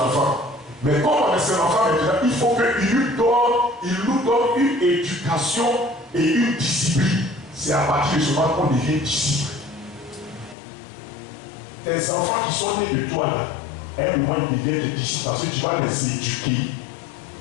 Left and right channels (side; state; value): right; drops out; at 10.6 s